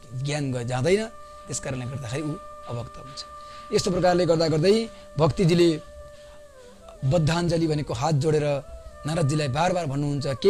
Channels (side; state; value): both; identical; correlation 1.00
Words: ज्ञान जाँदैन, त्यस कारणले गर्दाखेरि ऊ अभक्त हुन्छ। यस्तो प्रकारले गर्दा गर्दै भक्तिजीले बद्धाञ्जली भनेको हात जोडेर नारदजीलाई बार बार भन्नुहुन्छ